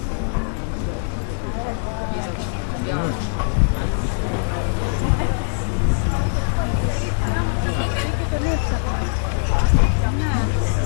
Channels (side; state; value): right; silent; digital silence